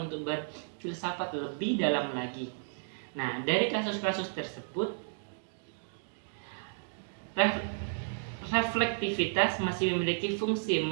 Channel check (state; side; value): silent; left; digital silence